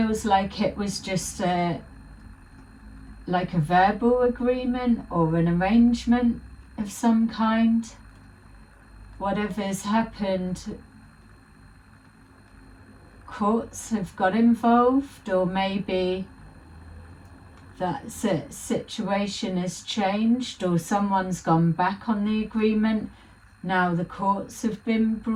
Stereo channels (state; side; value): identical; both; correlation 1.00